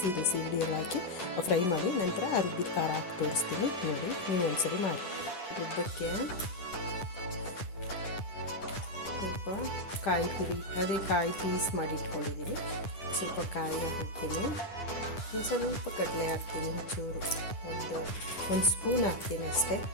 ಸೀಗಡಿ ಎಲ್ಲ ಹಾಕಿ ಫ್ರೈ ಮಾಡಿ ನಂತರ ಆ ರುಬ್ಬಿದ ಖಾರ ಹಾಕಿ ತೋರಿಸ್ತೀನಿ ನೋಡಿ. ನೀವು ಒಂದ್ಸರಿ ಮಾಡಿ. ರುಬ್ಬಕ್ಕೆ ಸ್ವಲ್ಪ ಕಾಯಿ ತುರಿ, ಅದೇ ಕಾಯಿ ಪೀಸ್ ಮಾಡಿ ಇಟ್ಕೊಂಡಿದ್ದೀನಿ. ಸ್ವಲ್ಪ ಕಾಯಿ ಹಾಕ್ತೀನಿ, ಸ್ವಲ್ಪ ಕಡಲೆ ಹಾಕ್ತೀನಿ, ಚೂರು ಒಂದು ಸ್ಪೂನ್ ಹಾಕ್ತೀನಿ ಅಷ್ಟೇ.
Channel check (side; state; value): right; late; 10 ms